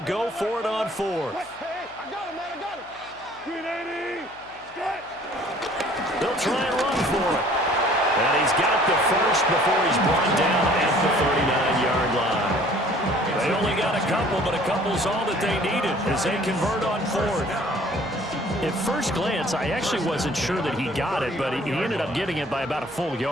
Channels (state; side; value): noise; right; hum, 27 dB below the sound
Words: go for it on 4th. Hey, I got him, man, I got him. 380. They'll try and run for it. And he's got the first before he's brought down at the 39-yard line. They only got a couple, but a couple's all that they needed as they convert on 4th. At first glance, I actually wasn't sure that he got it, but he ended up getting it by about a full